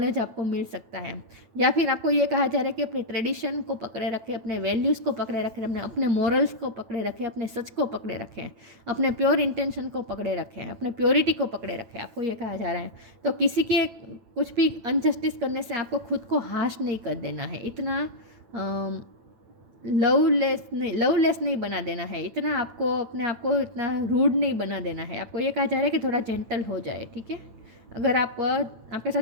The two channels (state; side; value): late; left; 9.0 ms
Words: आपको मिल सकता है। या फिर आपको ये कहा जा रहा है कि अपने ट्रेडिशन को पकड़े रखें, अपने वैल्यूज़ को पकड़े रखें, अपने मोरल्स को पकड़े रखें, अपने सच को पकड़े रखें, अपने प्योर इंटेंशन को पकड़े रखें, अपने प्योरिटी को पकड़े रखें, आपको ये कहा जा रहा है। तो किसी के कुछ भी अनजस्टिस करने से आपको खुद को हाश नहीं कर देना है, इतना लवलेस नहीं बना देना है, इतना आपको अपने आप को इतना रूड नहीं बना देना है। आपको ये कहा जा रहा है कि थोड़ा जेंटल हो जाए, ठीक है। अगर आपके साथ